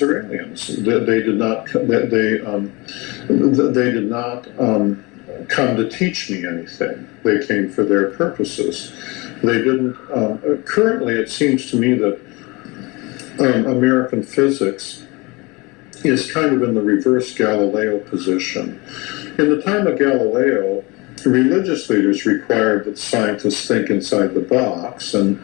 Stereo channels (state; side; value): quieter; right; 25.3 dB